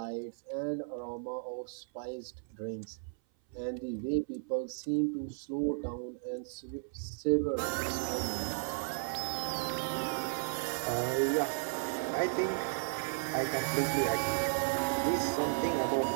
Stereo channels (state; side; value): silent; left; 55 dB below the other